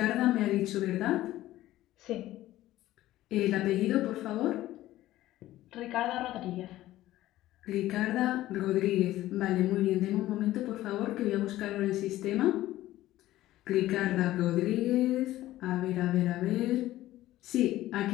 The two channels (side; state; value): right; quieter; 15.2 dB